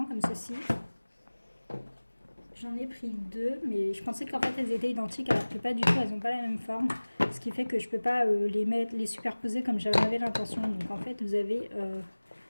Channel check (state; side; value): inverted; both; correlation -1.00